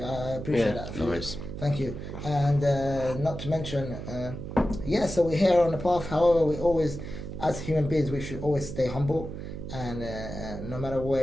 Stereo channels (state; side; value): noise; right; hum, 8 dB below the sound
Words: I appreciate that. No worries. Thank you. And not to mention, so we're here on the path. However, we always, as human beings, we should always stay humble. And no matter